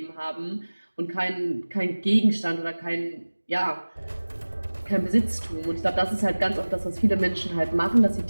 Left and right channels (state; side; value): inverted; both; correlation -1.00